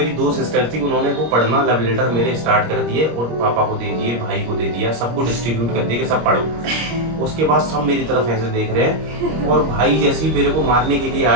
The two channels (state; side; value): late; left; 25 ms